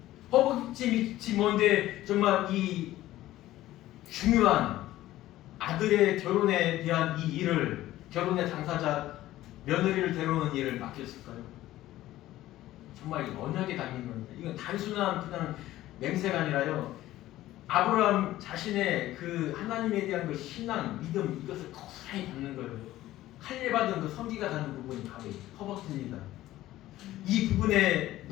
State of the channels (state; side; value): quieter; right; 15.1 dB